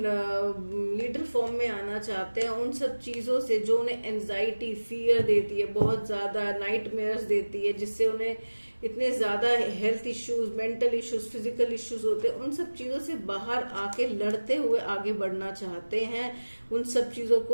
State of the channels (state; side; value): inverted; both; correlation -1.00